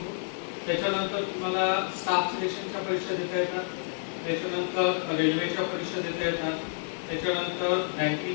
त्याच्यानंतर तुम्हाला स्टाफ सिलेक्शनच्या परीक्षा देता येतात, त्याच्यानंतर रेल्वेच्या परीक्षा देता येतात, त्याच्यानंतर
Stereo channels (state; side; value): silent; right; digital silence